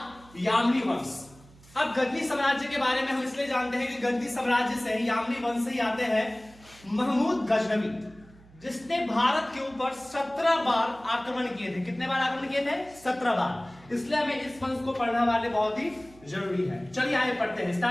यामनी वंश। अब गजनी साम्राज्य के बारे में हम इसलिए जानते हैं कि गजनी साम्राज्य से यामनी वंश से ही आते हैं महमूद गजनवी, जिसने भारत के ऊपर 17 बार आक्रमण किए थे। कितने बार आक्रमण किए थे? 17 बार। इसलिए हमें इस वंश को पढ़ना वाले बहुत ही जरूरी है। चलिए आगे पढ़ते हैं,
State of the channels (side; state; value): right; noise; hum, 24 dB below the sound